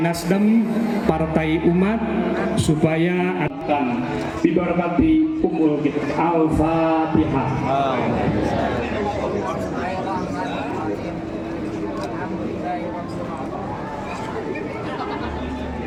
Partai Umat, supaya akan diberkati umur kita. Al-Fatihah.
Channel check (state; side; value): identical; both; correlation 1.00